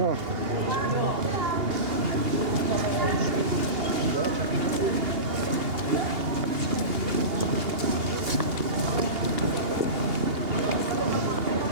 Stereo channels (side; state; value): left; late; 2.8 ms